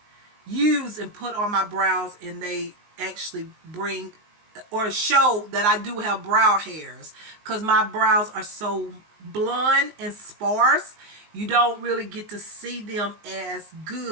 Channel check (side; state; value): left; late; 19 ms